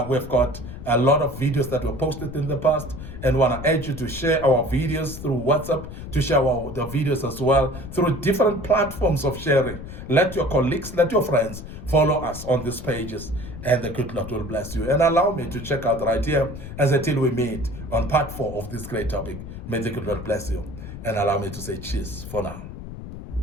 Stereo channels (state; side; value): noise; left; rumble, 11 dB below the sound